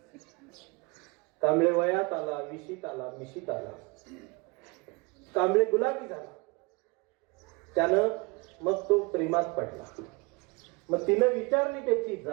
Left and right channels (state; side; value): quieter; left; 27.3 dB